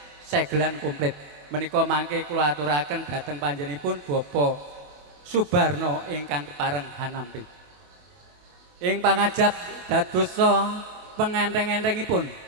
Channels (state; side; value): late; left; 27 ms